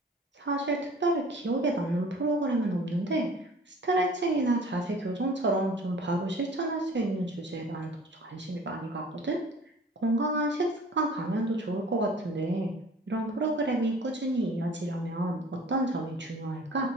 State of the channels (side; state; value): both; normal; correlation 0.47